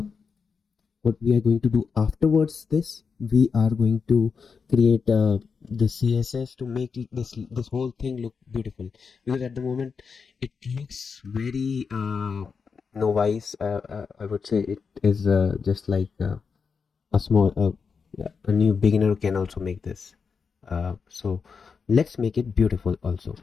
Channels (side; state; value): right; quieter; 5.6 dB